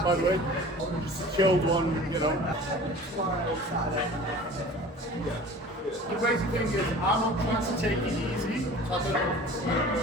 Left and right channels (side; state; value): both; normal; correlation 0.42